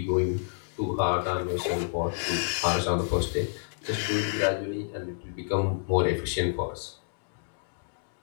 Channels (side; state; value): right; silent; digital silence